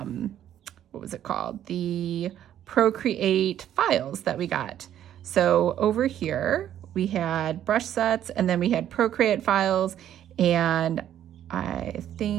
what was it called? The Procreate files that we got. So over here, we had brush sets, and then we had Procreate files, and I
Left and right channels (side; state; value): left; quieter; 11.0 dB